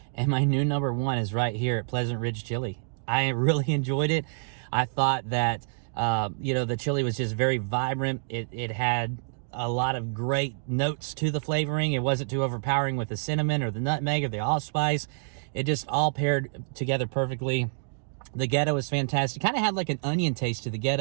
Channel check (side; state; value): left; silent; digital silence